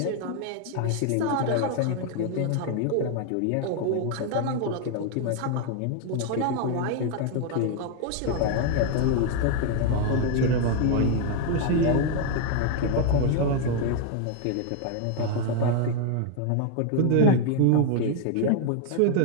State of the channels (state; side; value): different; both; correlation 0.01